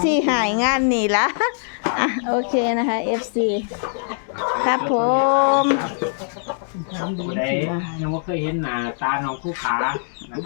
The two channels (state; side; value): silent; right; digital silence